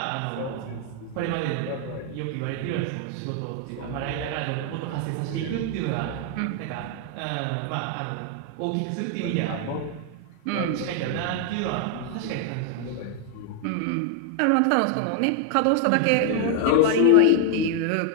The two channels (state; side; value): different; both; correlation 0.00